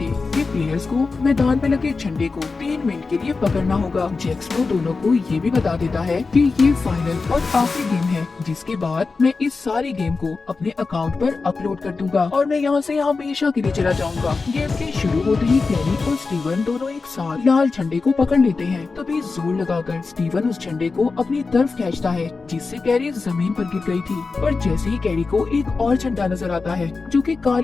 कि प्लेयर्स को मैदान में लगे झंडे को 3 मिनट के लिए पकड़ना होगा। जैक स्प्रो दोनों को ये भी बता देता है कि ये फाइनल और आखिरी गेम है, जिसके बाद मैं इस सारी गेम को अपने अकाउंट पर अपलोड कर दूंगा और मैं यहाँ से हमेशा के लिए चला जाऊंगा। गेम के शुरू होते ही कैरी और स्टीवन दोनों एक साथ लाल झंडे को पकड़ लेते हैं। तभी जोर लगाकर स्टीवन उस झंडे को अपनी तरफ खींचता है, जिससे कैरी जमीन पर गिर गई थी। पर जैसे ही कैरी को एक और झंडा नजर आता है जो कि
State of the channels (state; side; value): quieter; right; 4.2 dB